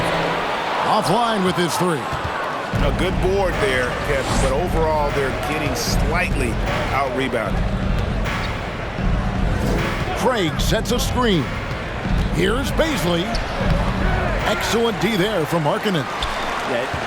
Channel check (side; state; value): both; identical; correlation 1.00